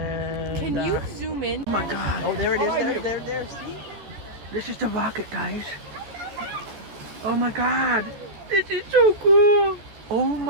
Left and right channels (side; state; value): left; late; 14 ms